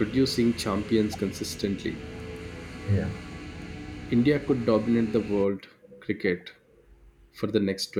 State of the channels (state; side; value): identical; both; correlation 1.00